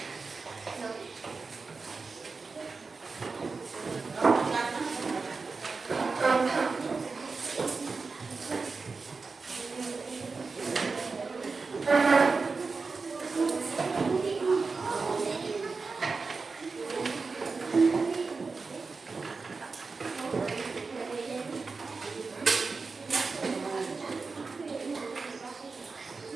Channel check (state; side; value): quieter; left; 4.4 dB